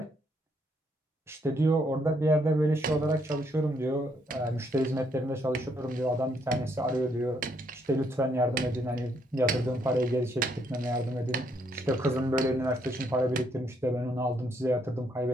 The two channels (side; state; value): both; normal; correlation 0.72